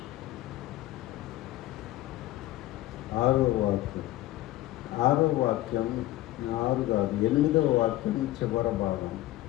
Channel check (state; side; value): quieter; right; 16.1 dB